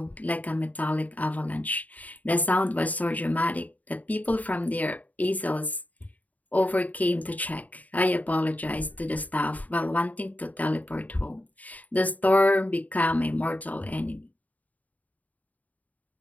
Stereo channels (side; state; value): right; late; 0.074 ms